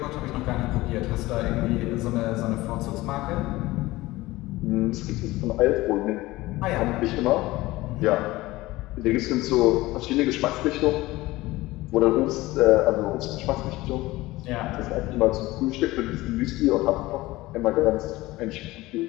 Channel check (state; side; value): quieter; right; 18.9 dB